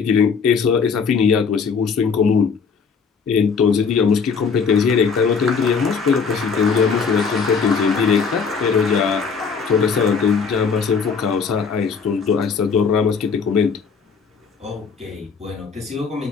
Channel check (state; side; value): quieter; right; 5.7 dB